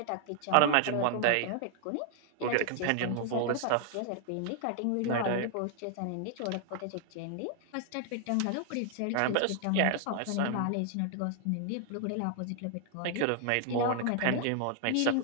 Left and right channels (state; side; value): different; both; correlation 0.00